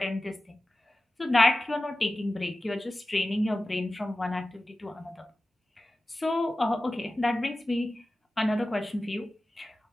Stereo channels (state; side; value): normal; both; correlation 0.95